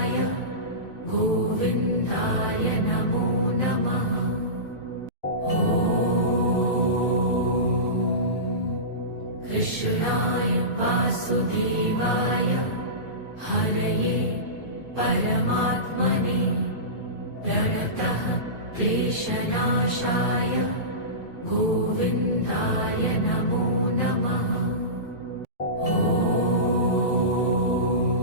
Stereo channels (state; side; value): late; right; 2.4 ms